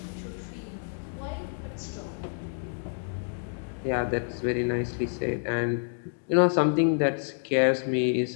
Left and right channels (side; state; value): right; silent; digital silence